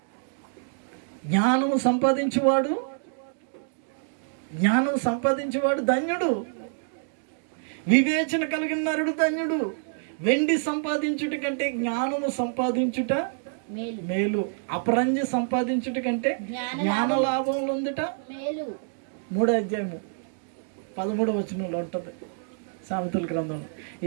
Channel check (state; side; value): silent; left; digital silence